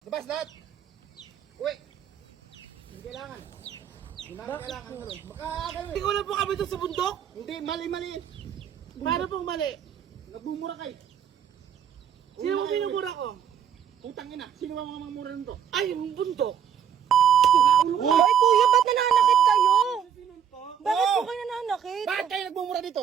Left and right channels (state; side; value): quieter; left; 8.6 dB